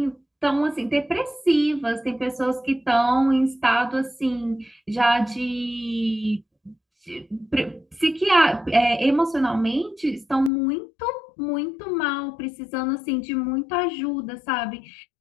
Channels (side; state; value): right; drops out; at 10.5 s